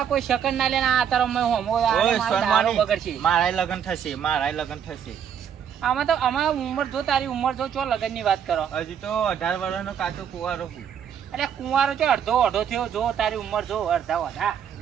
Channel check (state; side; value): quieter; left; 8.4 dB